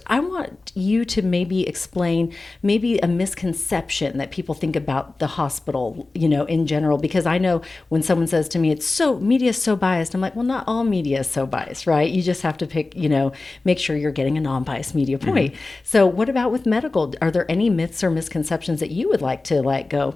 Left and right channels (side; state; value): right; quieter; 3.4 dB